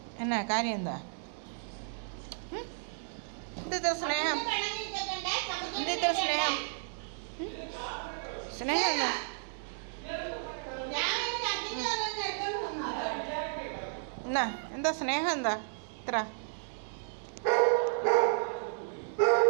എന്നാ കാര്യം? എന്താ എന്തിത്ര സ്നേഹം? എന്തിത്ര സ്നേഹം? സ്നേഹം എന്താ? എന്നാ എന്താ സ്നേഹം? എന്താ ഇത്ര?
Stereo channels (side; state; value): left; silent; 56 dB below the other